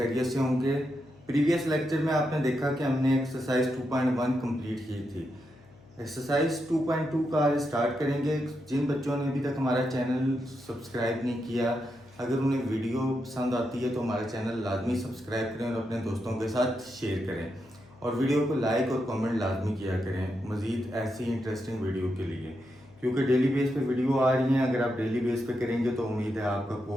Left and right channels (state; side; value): noise; left; hum, 25 dB below the sound